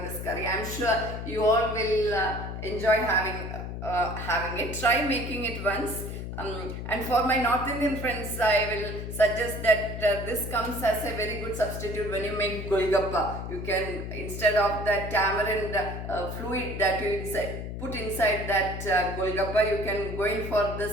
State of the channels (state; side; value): noise; left; hum, 6 dB below the sound